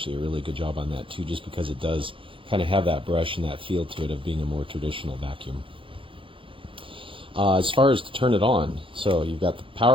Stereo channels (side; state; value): left; late; 0.25 ms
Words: a really good job on that too, just because it does kind of have that brush and that feel to it of being a more traditional vacuum. As far as to turn it on, so you've got the